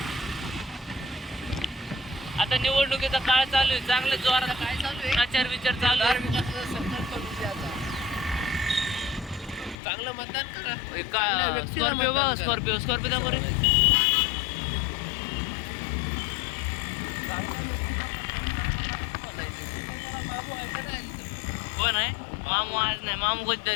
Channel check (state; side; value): drops out; right; at 9.8 s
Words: आता निवडणुकीचा काळ चालू आहे, चांगलं जोरात काय चालू आहे? प्रचार विचार चालू आहे. संकल्प करून द्या आता. चांगलं मतदान करा. एका चांगल्या व्यक्तीला स्कॉर्पिओ मतदान बघा, करा. स्कॉर्पिओ दा बरं. मामू आहे का नाही? कोण आहे मामू? आज नाही, मामू